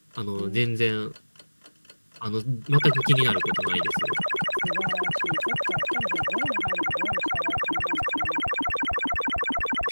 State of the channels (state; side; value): inverted; both; correlation -1.00